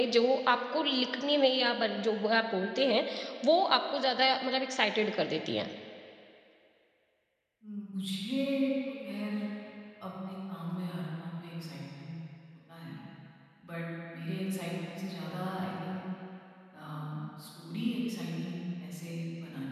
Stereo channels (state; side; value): identical; both; correlation 1.00